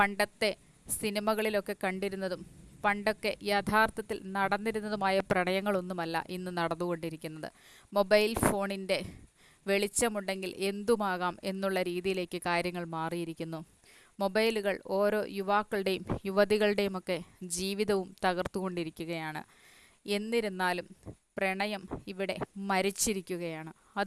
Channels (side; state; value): both; identical; correlation 1.00